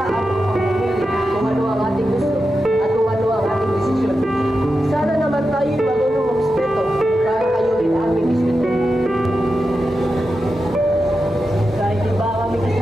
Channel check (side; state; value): both; normal; correlation 0.90